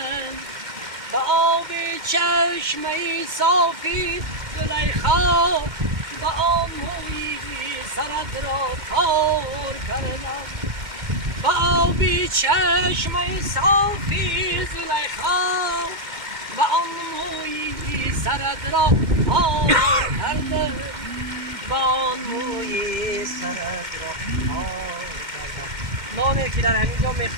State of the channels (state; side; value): late; left; 2.1 ms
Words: به آب چشمه صافی زلیخا، به آن موی سرت را تار کردم. به آب چشمه صافی زلیخا، به آن موی سرت را تار کردم. به آن موی سرت را تار کردم. نانی که در همینجا